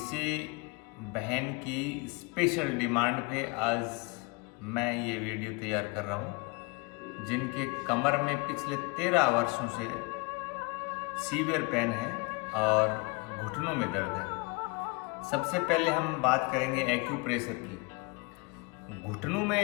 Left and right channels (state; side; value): quieter; right; 28.6 dB